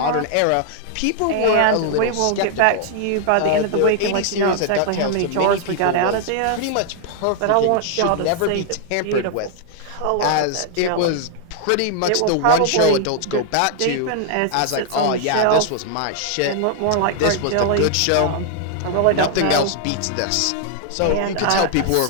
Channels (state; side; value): different; both; correlation 0.00